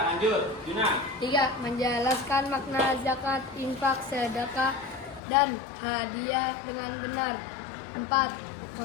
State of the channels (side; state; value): right; drops out; at 5.2 s